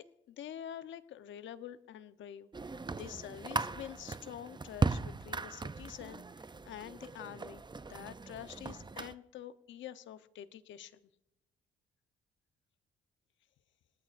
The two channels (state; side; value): normal; both; correlation 0.56